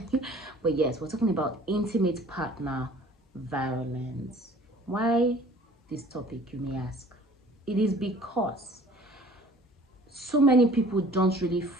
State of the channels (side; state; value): both; normal; correlation 0.50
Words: But yes, we're talking about intimate partner violence. Why this topic, you may ask? It is because so many people don't really